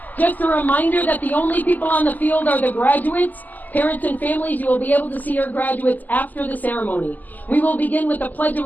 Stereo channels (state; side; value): late; right; 0.083 ms